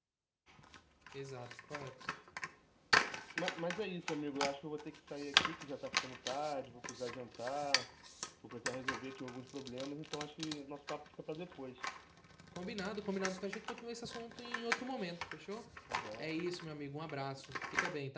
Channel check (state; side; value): identical; both; correlation 1.00